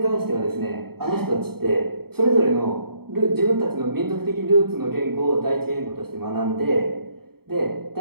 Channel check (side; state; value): left; late; 0.95 ms